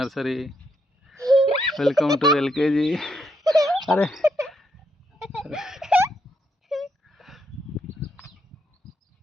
welcome to LKG. అరే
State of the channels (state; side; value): normal; both; correlation 0.77